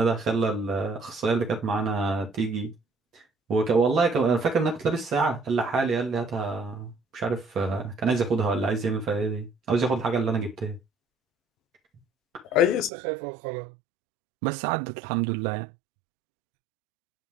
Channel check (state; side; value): drops out; left; at 12.9 s